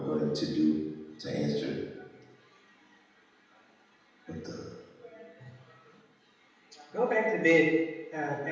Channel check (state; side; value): identical; both; correlation 1.00